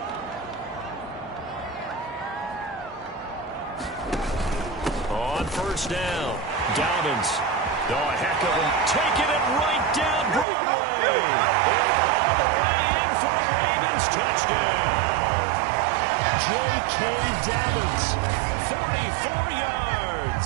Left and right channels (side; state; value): left; drops out; at 10.5 s